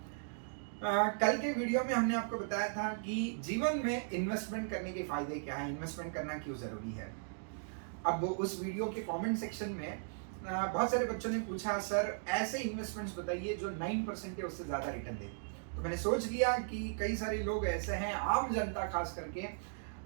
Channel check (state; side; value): silent; left; digital silence